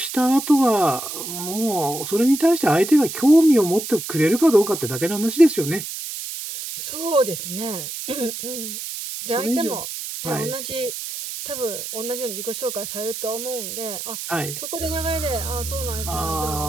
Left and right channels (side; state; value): right; noise; hiss, 7 dB below the sound